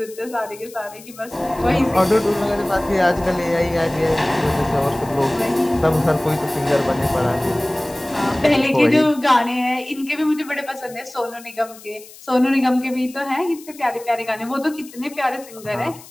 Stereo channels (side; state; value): left; noise; hiss, 20 dB below the sound